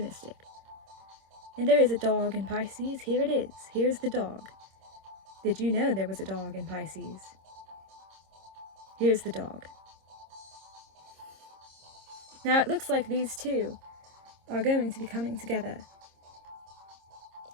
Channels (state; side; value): late; left; 26 ms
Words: And there is a dog in Pisces. Here it is. Here's the dog. Did you know there was a dog in Pisces? Here's the dog. Now it looks like these two are going to be coming together.